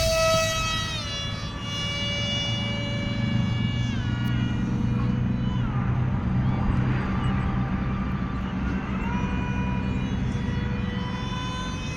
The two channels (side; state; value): both; identical; correlation 1.00